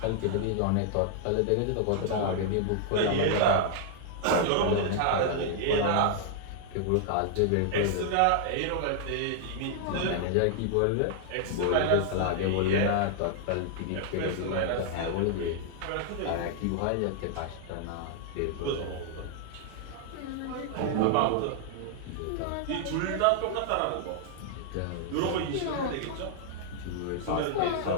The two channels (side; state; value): both; different; correlation 0.00